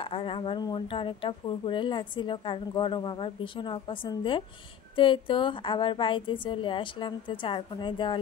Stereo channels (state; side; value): quieter; right; 8.8 dB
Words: আর আমার মনটা অনেকটা ফুরফুরে লাগছিল, কারণ গরম আমার ভীষণ অপছন্দের। তো এই তো আবার বাড়িতে চলে আসলাম। তো চার কোনায়